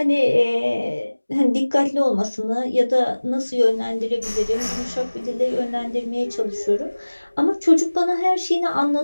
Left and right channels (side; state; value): both; inverted; correlation -1.00